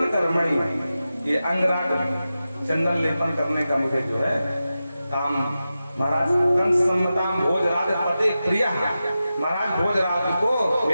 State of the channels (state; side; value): inverted; both; correlation -0.92